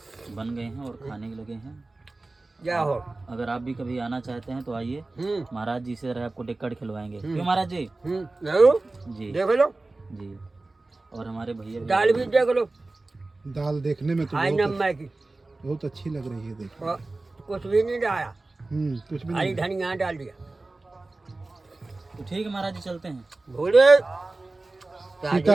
बन गए हैं और खाने के लगे हैं। क्या हो, अगर आप भी कभी आना चाहते हैं तो आइए, महाराज जी से आपको टिक्कट खिलवाएंगे। क्यों महाराज जी? जरूर जी, देख लो जी। और हमारे भैया दाल भी देख लो, दाल देखने में तो हाई नम्बर की, बहुत अच्छी लग रही है। देखो और कुछ भी नहीं डाला, कुछ भी हरी नहीं। धनिया डाल दिया। तो ठीक है महाराज जी, चलते हैं। भोले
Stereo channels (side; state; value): left; quieter; 3.2 dB